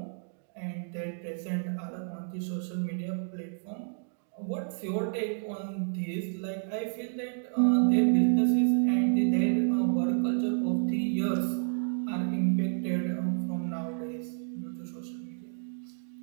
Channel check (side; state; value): left; silent; digital silence